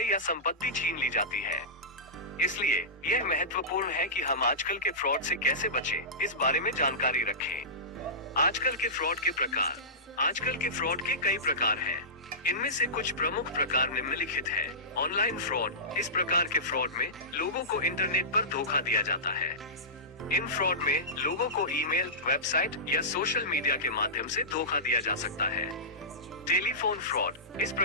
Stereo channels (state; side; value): normal; both; correlation -0.19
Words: या संपत्ति छीन ली जाती है। इसलिए यह महत्वपूर्ण है कि हम आजकल के फ्रॉड से कैसे बचें, इस बारे में जानकारी रखें। आजकल के फ्रॉड के प्रकार। आजकल के फ्रॉड के कई प्रकार हैं। इनमें से कुछ प्रमुख प्रकार निम्नलिखित हैं। Online fraud. इस प्रकार के फ्रॉड में लोगों को इंटरनेट पर धोखा दिया जाता है। इन फ्रॉड में लोगों को ईमेल, वेबसाइट या सोशल मीडिया के माध्यम से धोखा दिया जा सकता है। Telephone fraud. इस